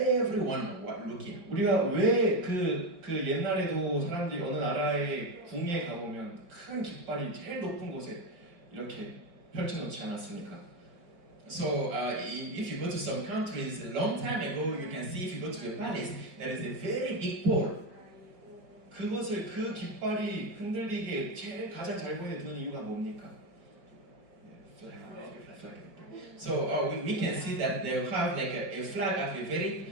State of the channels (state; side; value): late; left; 5.0 ms